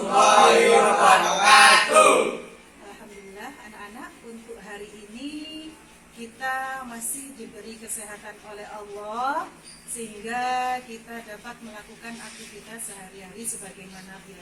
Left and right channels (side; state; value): both; identical; correlation 1.00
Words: wabarakatuh. Alhamdulillah anak-anak, untuk hari ini kita masih diberi kesehatan oleh Allah sehingga kita dapat melakukan aktivitas sehari-hari sebagaimana